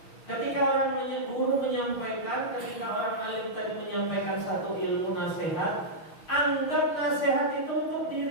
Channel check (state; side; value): late; right; 6.2 ms